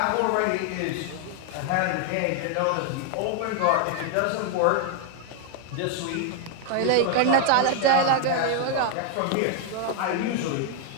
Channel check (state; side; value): different; both; correlation 0.00